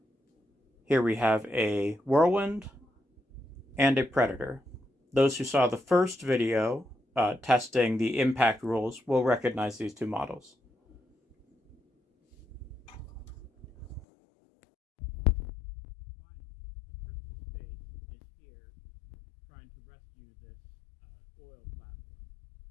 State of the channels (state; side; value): drops out; right; at 14.1 s